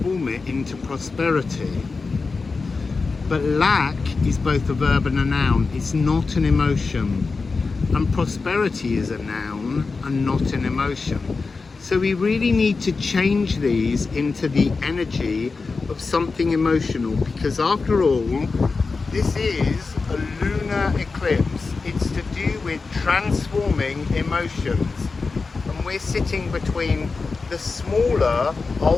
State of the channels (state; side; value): quieter; right; 4.3 dB